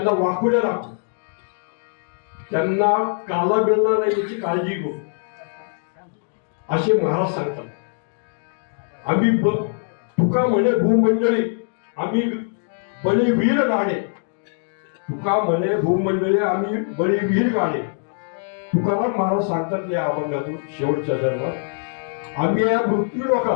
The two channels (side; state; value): right; silent; digital silence